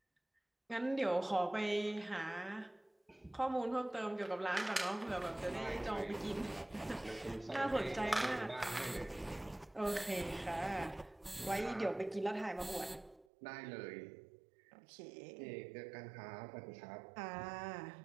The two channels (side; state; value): left; drops out; at 13.2 s